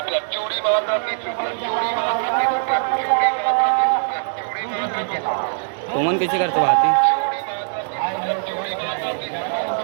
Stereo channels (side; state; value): left; silent; digital silence